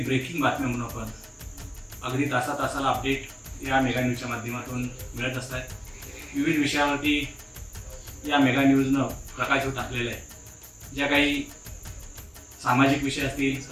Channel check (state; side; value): identical; both; correlation 1.00